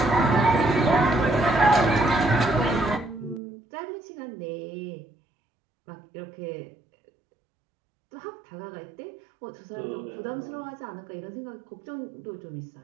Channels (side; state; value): left; drops out; at 3.4 s